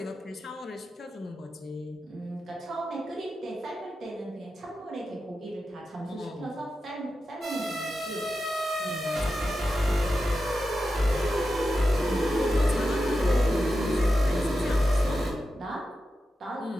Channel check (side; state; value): both; normal; correlation 0.90